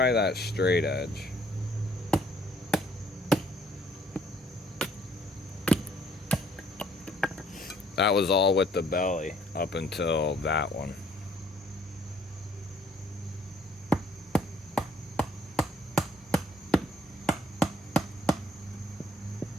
that straight edge. That was all with the belly up until that one.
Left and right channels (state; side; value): normal; both; correlation 0.62